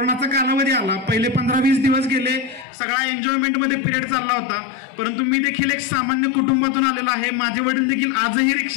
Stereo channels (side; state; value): right; drops out; at 2.7 s